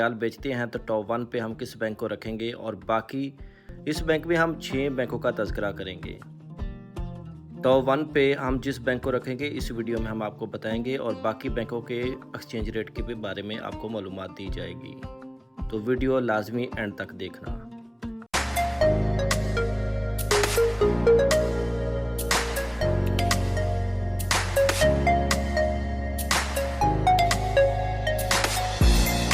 बेचते हैं तो टॉप 1 पे हम किस बैंक को रखेंगे और बाकी इस बैंक में हम 6 बैंकों का तज़किरा करेंगे। टॉप 1 पे हम जिस बैंक को रखेंगे इस वीडियो में हम आपको बताएंगे और बाकी बैंकों के एक्सचेंज रेट के बारे में आपको मालूमात दी जाएगी। तो वीडियो लाजमी एंड तक देखना।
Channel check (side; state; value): both; identical; correlation 1.00